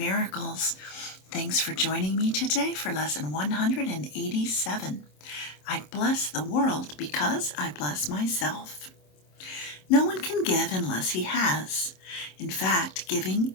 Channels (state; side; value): late; right; 27 ms